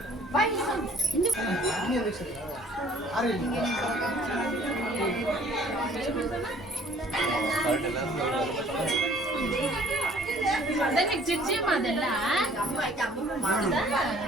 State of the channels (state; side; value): normal; both; correlation 0.55